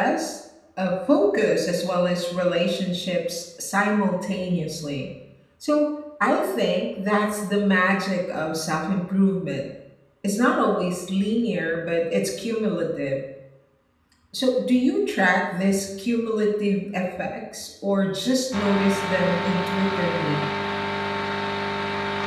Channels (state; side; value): identical; both; correlation 1.00